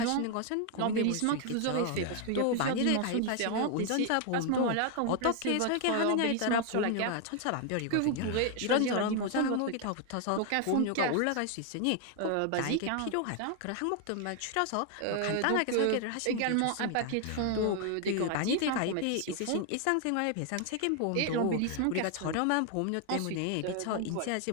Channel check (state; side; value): different; both; correlation 0.00